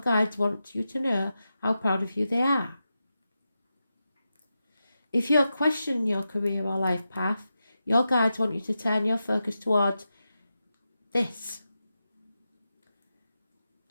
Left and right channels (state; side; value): inverted; both; correlation -0.90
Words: want you to know how proud of you they are. If you're questioning your career or life path, Your guides want you to turn your focus towards this.